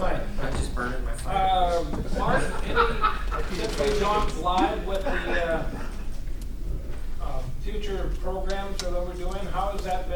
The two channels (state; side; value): identical; both; correlation 1.00